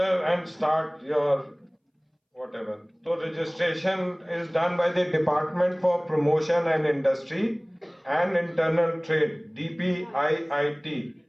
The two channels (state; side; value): identical; both; correlation 1.00